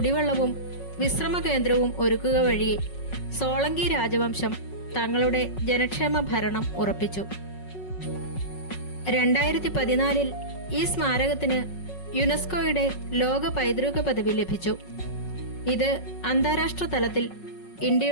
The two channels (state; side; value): late; right; 5.4 ms